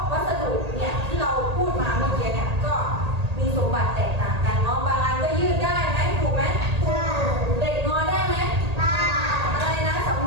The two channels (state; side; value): late; left; 1.8 ms